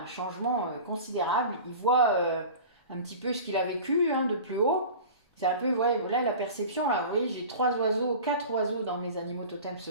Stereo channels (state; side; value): inverted; both; correlation -0.37